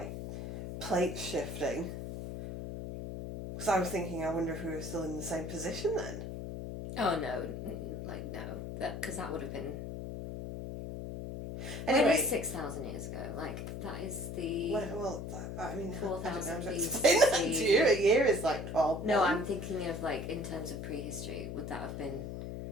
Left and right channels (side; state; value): left; noise; hum, 7 dB below the sound